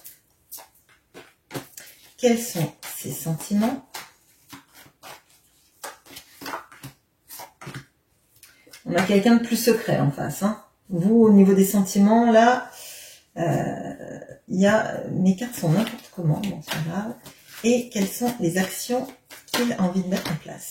Quels sont ses sentiments? On a quelqu'un de plus secret en face. Hein. Vous, au niveau des sentiments, là, il y a... Mes cartes sont n'importe comment, bon, c'est pas grave. Et quelles sont les actions qu'il a envie de mettre en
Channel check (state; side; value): identical; both; correlation 1.00